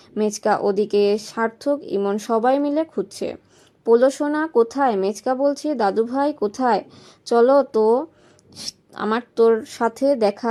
মেচকা, ওদিকে সার্থক, ইমন সবাই মিলে খুঁজছে। পোলো সোনা কোথায়? মেচকা বলছে, দাদু ভাই কোথায়? চলো তো, আমার তোর সাথে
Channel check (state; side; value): identical; both; correlation 1.00